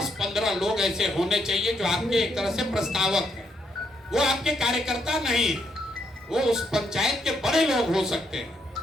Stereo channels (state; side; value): normal; both; correlation 0.75